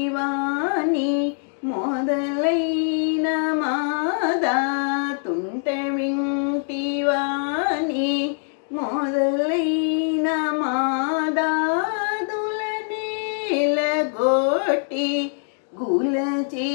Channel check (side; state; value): right; silent; digital silence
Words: మొదలైన మాదా తుంట వింటివాని మొదలైన మాదాదులనేలగొట్టి గుల